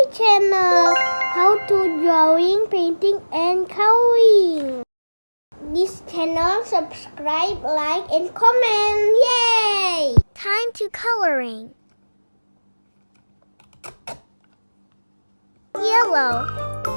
channel. How to drawing, painting and coloring. This channel, subscribe, like and comment. Yay! Time to coloring. Yellow.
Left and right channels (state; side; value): inverted; both; correlation -1.00